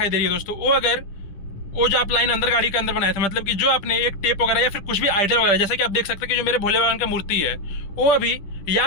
दे रही है दोस्तों, वो जो आप लाइन अंदर गाड़ी के अंदर बनाया था, मतलब कि जो आपने एक टेप वगैरह या फिर कुछ भी आइडल वगैरह, जैसे कि आप देख सकते हैं कि जो मेरे भोले बाबा की मूर्ति है, वो अभी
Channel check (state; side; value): late; right; 10 ms